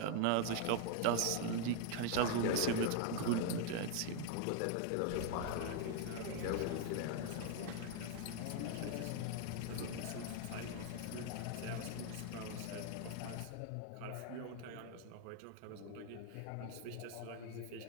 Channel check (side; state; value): both; different; correlation 0.00